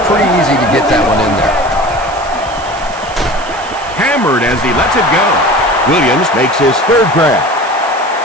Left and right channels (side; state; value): right; noise; hiss, 18 dB below the sound